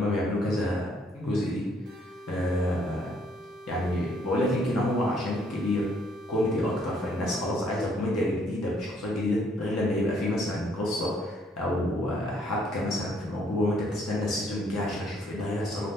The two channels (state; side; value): normal; both; correlation 0.66